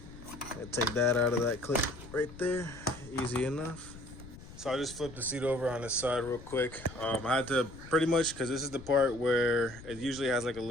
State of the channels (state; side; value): noise; left; rumble, 16 dB below the sound